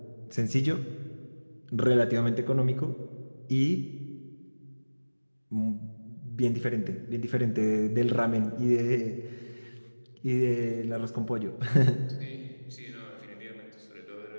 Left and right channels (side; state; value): both; inverted; correlation -1.00